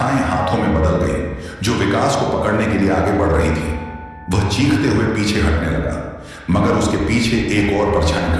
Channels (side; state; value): both; identical; correlation 1.00